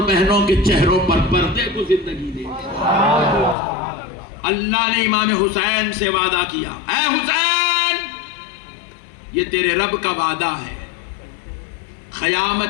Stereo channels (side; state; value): right; drops out; at 3.6 s